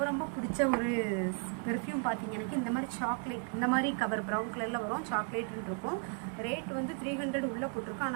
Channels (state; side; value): quieter; left; 37.8 dB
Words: ரொம்ப பிடிச்ச ஒரு பெர்ஃப்யூம் பார்த்தீங்க. எனக்கு இந்த மாதிரி சாக்லேட், இந்த மாதிரி கவர் ப்ரௌன் கலரில் வரும், சாக்லேட்னு இருக்கும். ரேட் வந்து 300 உள்ளே போட்டிருக்கோம்.